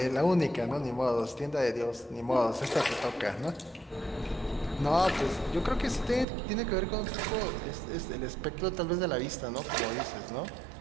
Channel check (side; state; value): left; drops out; at 6.2 s